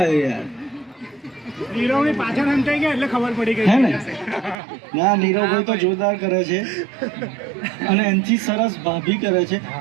યાર નીરવની પાછળ હંતાઈ ગયા એટલે ખબર પડી ગઈ હે ને ના નીરવભાઈ તો જોરદાર કરે છે અને એનાથી સરસ ભાભી કરે છે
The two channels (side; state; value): left; drops out; at 4.5 s